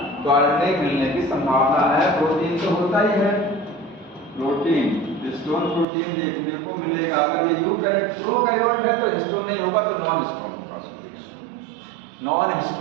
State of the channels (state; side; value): drops out; left; at 5.9 s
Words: तो आरएनए मिलने की संभावना है, प्रोटीन तो होता ही है, प्रोटीन, हिस्टोन प्रोटीन देखने को मिलेगा। अगर ये प्रोकैरियोट है तो हिस्टोन नहीं होगा, तो नॉन हिस्टोन होगा, नॉन